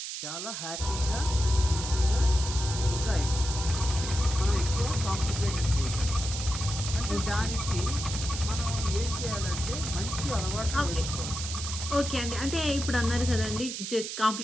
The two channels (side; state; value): right; noise; hiss, 6 dB below the sound